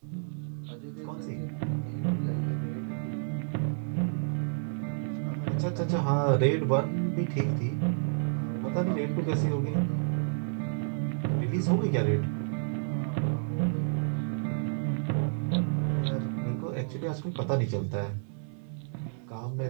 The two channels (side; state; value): left; silent; digital silence